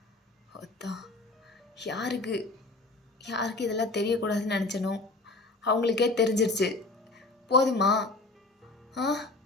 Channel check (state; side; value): quieter; right; 3.2 dB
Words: யாருக்கு இதெல்லாம் தெரியக்கூடாதுன்னு நினச்சனோ அவங்களுக்கே தெரிஞ்சிருச்சு. போதுமா?